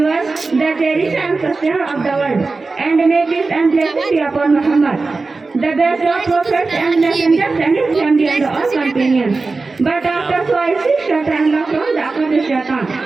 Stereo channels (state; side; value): quieter; left; 3.8 dB